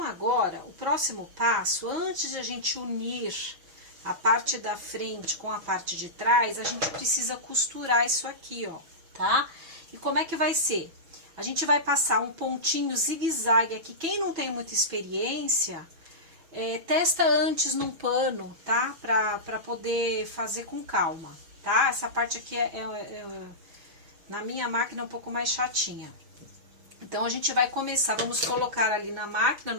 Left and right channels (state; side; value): late; left; 6.1 ms